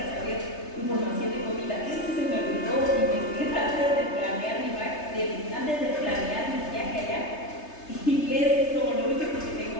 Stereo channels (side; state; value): right; late; 3.3 ms